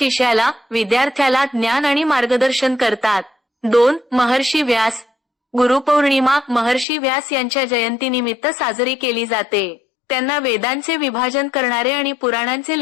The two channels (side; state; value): right; drops out; at 6.9 s